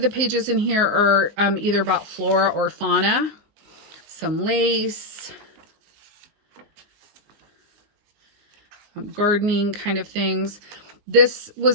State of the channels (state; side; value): late; left; 20 ms